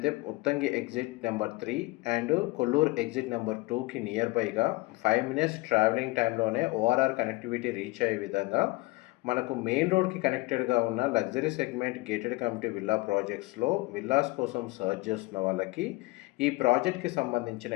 Muthangi exit number 3 and Kollur exit number 2కి నియర్ బైగా 5 మినిట్స్ ట్రావెలింగ్ టైంలోనే ఓఆర్ఆర్ కనెక్టివిటీ రీచ్ అయ్యే విధంగా మనకు మెయిన్ రోడ్కి కనెక్టెడ్గా ఉన్న luxury segment gated community villa ప్రాజెక్ట్స్లో విల్లాస్ కోసం సర్చ్ చేస్తున్న వాళ్ళకి ఈ ప్రాజెక్ట్కి సంబంధించిన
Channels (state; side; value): quieter; right; 23.1 dB